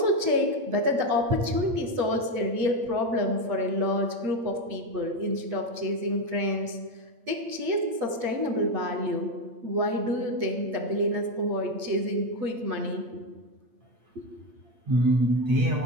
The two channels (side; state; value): left; late; 8.7 ms